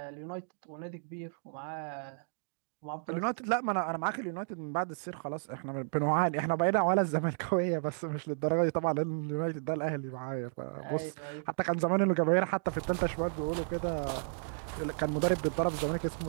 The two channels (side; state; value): left; silent; digital silence